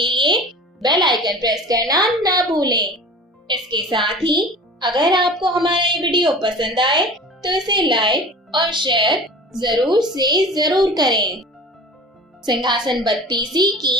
लिए बेल आइकन प्रेस करना ना भूलें। इसके साथ ही अगर आपको हमारा ये वीडियो पसंद आए तो इसे लाइक और शेयर जरूर से जरूर करें। सिंहासन बत्तीसी की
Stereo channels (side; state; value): both; normal; correlation 0.39